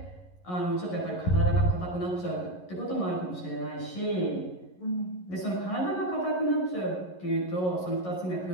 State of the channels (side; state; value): right; late; 11 ms